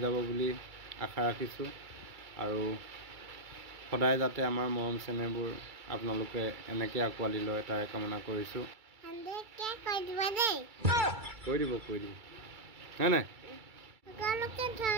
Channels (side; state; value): left; late; 2.3 ms